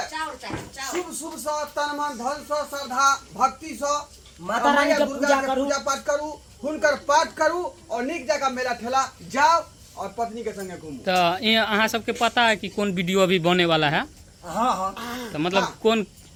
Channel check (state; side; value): identical; both; correlation 1.00